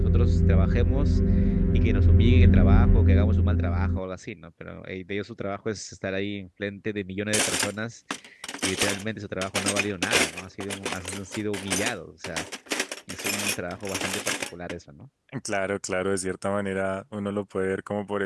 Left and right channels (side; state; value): both; identical; correlation 1.00